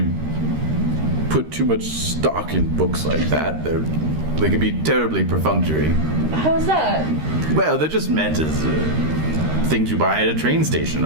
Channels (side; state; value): left; late; 13 ms